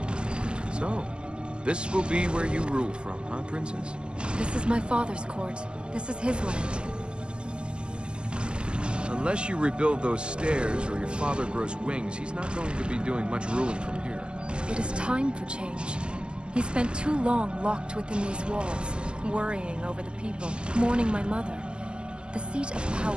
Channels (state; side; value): late; left; 0.049 ms